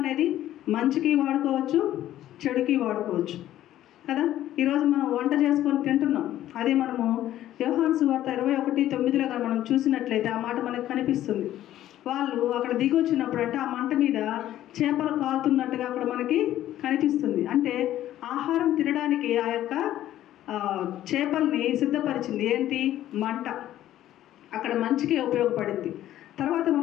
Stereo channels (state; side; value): quieter; right; 13.0 dB